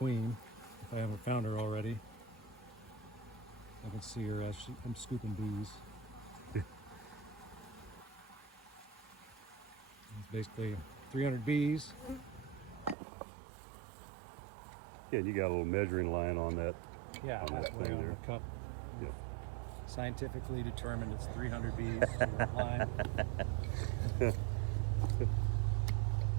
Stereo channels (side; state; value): left; drops out; at 13.0 s